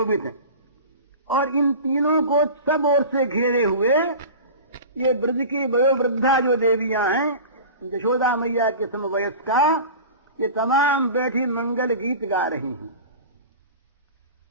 हैं, और इन तीनों को सब ओर से घेरे हुए ये ब्रज की वयोवृद्धा जो देवियां हैं, यशोदा मैया के समवयस्का, ये तमाम बैठी मंगल गीत गा रही हैं।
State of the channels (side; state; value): both; inverted; correlation -0.35